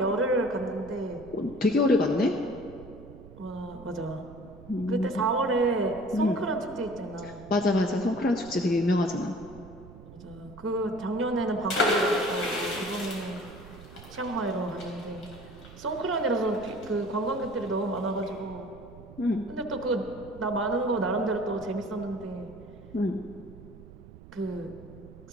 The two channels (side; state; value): right; noise; rumble, 17 dB below the sound